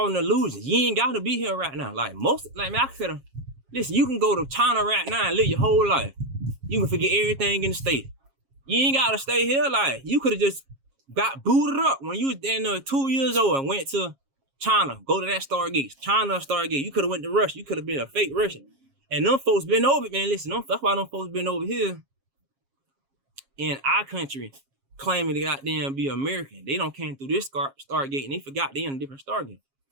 an illusion. You ain't got to be here right now. Like, man, I could have, listen, you can go to China right now and live your whole life. You can forget everything in the state. You ain't got to stay here. Like, you could have just got booted up when you was 2 years old and went to China. Go to that Stargate. China Stargate. You could have went to Russia. You could have been a fake Russian. And them folks been over, man. Listen, that's why them folks been over here in our country claiming to goddamn be American. They don't came through this Stargate and they forgot they in a different Stargate.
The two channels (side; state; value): left; late; 7.4 ms